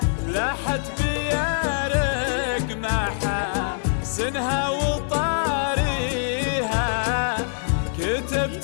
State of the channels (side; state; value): right; silent; digital silence